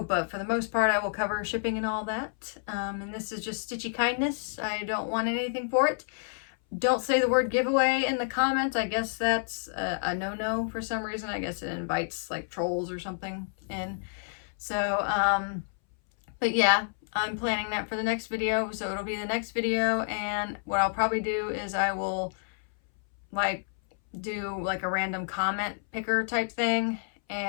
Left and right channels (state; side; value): silent; right; 58 dB below the other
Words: but for the most part, I will cover shipping and all that. And this is just stitchy kindness. I don't want anything for it. Don't say the word giveaway in the comments. I guess that's a no-no for some reason. I guess it invites like trolls or something in. So, but yeah, I'm planning that for the next video. So it'll be the next video. And what I'll probably do is I will like do like a random comment picker type thing